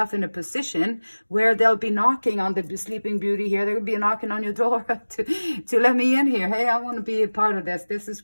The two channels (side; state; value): both; inverted; correlation -1.00